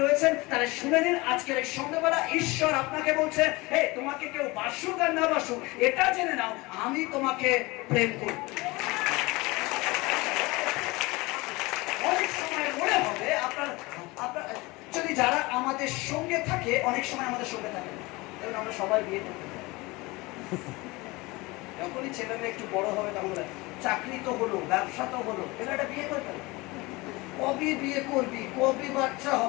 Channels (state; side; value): quieter; right; 23.1 dB